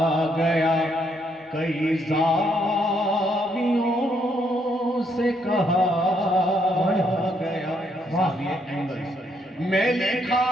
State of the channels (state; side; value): normal; both; correlation 0.73